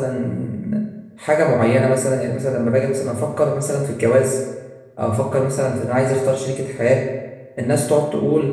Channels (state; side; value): identical; both; correlation 1.00